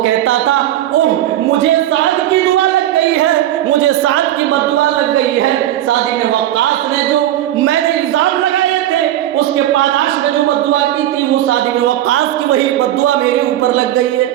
کہتا تھا اوہ مجھے سعد کی دعا لگ گئی ہے، مجھے سعد کی بددعا لگ گئی ہے۔ سعد بن وقاص نے جو میں نے الزام لگائے تھے اس کے پاداش میں جو بددعا کی تھی، وہ سعد بن وقاص کی وہی بددعا میرے اوپر لگ گئی ہے۔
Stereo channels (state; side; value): quieter; left; 13.0 dB